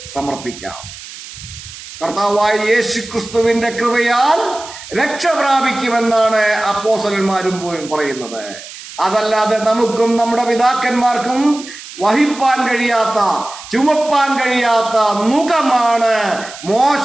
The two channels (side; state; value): right; noise; hiss, 14 dB below the sound